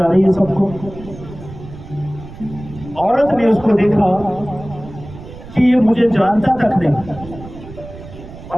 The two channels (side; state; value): right; noise; rumble, 15 dB below the sound